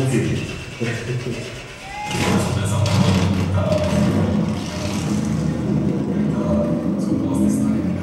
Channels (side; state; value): both; identical; correlation 1.00